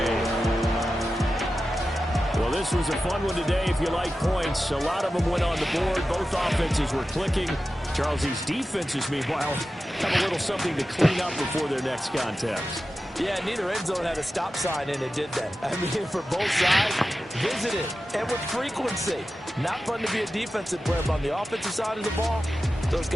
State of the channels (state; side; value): normal; both; correlation 0.93